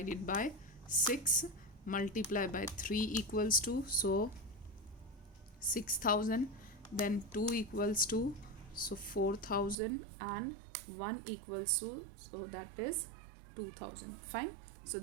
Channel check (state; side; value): drops out; left; at 9.8 s